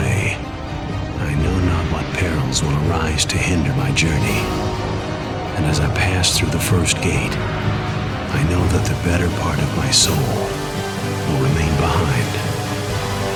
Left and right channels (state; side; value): identical; both; correlation 1.00